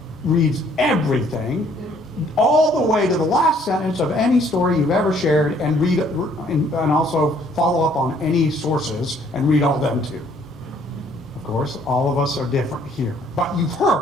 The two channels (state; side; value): normal; both; correlation 0.62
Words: reads everything, all the way to the last sentence of any story you've ever shared, and read and also follow up on any sources and read all them too. Of course, all of us are different here. But you've